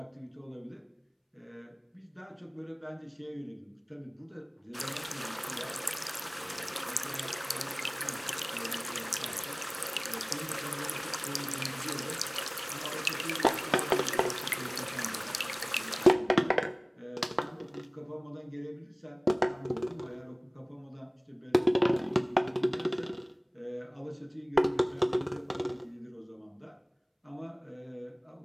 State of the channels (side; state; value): both; identical; correlation 1.00